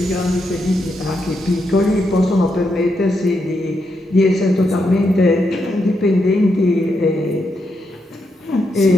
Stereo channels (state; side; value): normal; both; correlation 0.82